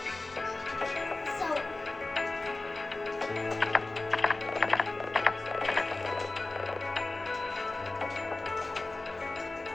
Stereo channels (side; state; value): right; quieter; 3.1 dB